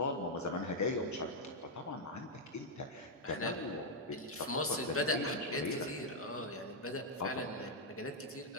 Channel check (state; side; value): normal; both; correlation -0.03